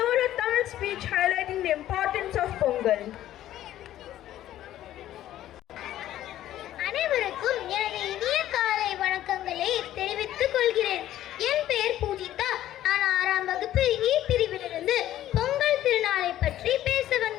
a Tamil speech highlighting the importance of Pongal. அனைவருக்கும் எனது இனிய காலை வணக்கங்களை தெரிவித்துக் கொள்கிறேன். என் பெயர் பூஜிதா. நான் 6ஆம் வகுப்பு இ பிரிவிலிருந்து பொங்கல் திருநாளை பற்றி பேச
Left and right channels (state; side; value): quieter; right; 13.0 dB